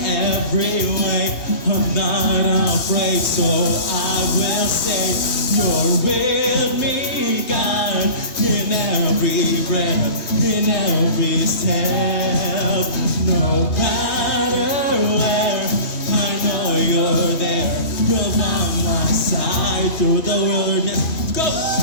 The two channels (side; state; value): right; late; 3.2 ms